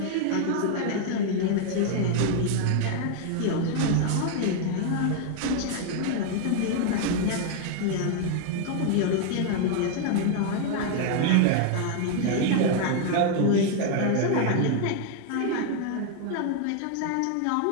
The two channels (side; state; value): both; different; correlation 0.00